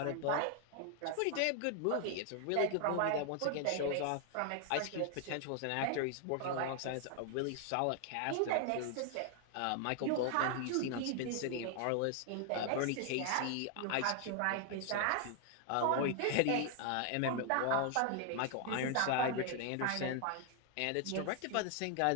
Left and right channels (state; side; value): different; both; correlation 0.00